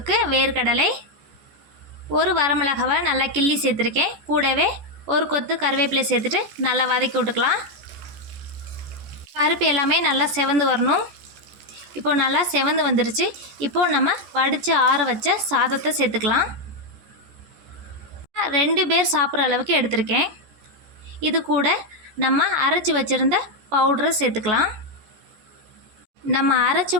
வேர்க்கடலை, ஒரு வரமிளகாவை நல்லா கிள்ளி சேர்த்துருக்கேன். கூடவே ஒரு கொத்து கருவேப்பிலை சேர்த்துட்டு நல்லா வதக்கி விட்டுக்கலாம். பருப்பு எல்லாமே நல்லா செவந்து வரணும். இப்போ நல்லா செவந்து வந்துருச்சு. இப்போது நம்ம வடித்து ஆற வச்ச சாதத்தை சேர்த்துக்கலாம். 2 பேர் சாப்பிட்ற அளவுக்கு எடுத்திருக்கேன். இது கூட நம்ம அரைச்சி வச்சுருந்த பவுடரை சேர்த்துக்கலாம். நம்ம அரைச்ச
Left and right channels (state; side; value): late; left; 14 ms